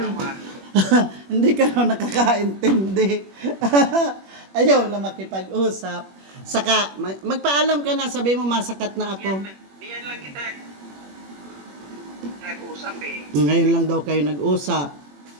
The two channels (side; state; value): left; late; 21 ms